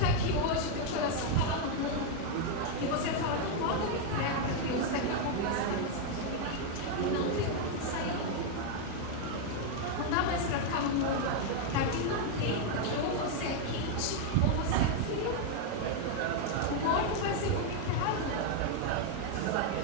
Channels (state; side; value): different; both; correlation 0.01